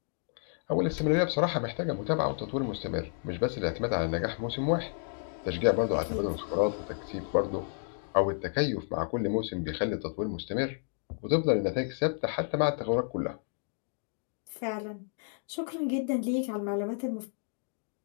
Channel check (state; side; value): silent; right; 57 dB below the other